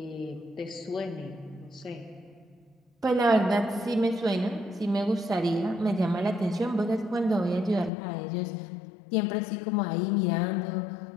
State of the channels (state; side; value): drops out; right; at 7.9 s